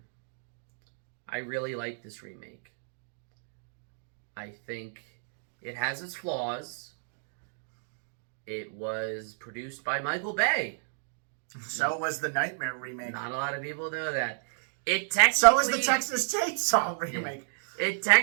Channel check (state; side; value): silent; left; digital silence